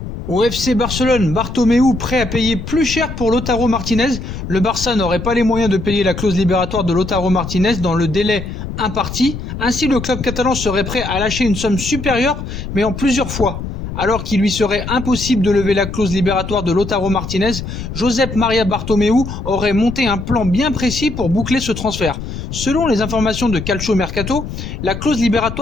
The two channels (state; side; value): noise; left; rumble, 7 dB below the sound